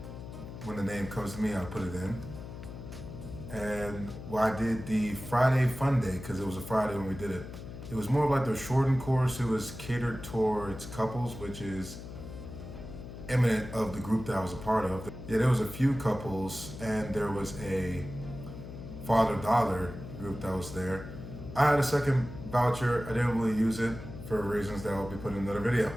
when the name comes to me, I'll put it in. And well, I did the Friday fun day because it was a Friday when we did it. It was more of like the shortened course. It was catered towards couples, which is eminent of the group that I was a part of. Yeah, there was a few couples and there was a father-daughter group that was there. I had a second voucher. I didn't really use it for reasons that I'll be putting in another video.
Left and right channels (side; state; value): left; noise; hum, 11 dB below the sound